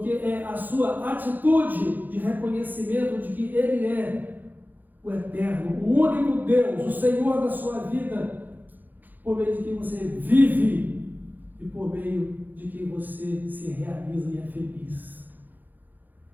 é a sua atitude de reconhecimento de que Ele é o eterno, o único Deus, o Senhor da sua vida, por meio de quem você vive e por meio de quem você se realiza e é feliz.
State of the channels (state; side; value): late; left; 0.086 ms